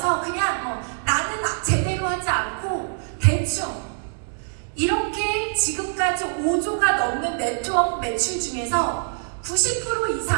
그냥 나는 제대로 하지 않고 대충 이렇게 지금까지 5조가 넘는 네트워크 매출 중에서 90%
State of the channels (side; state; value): left; silent; digital silence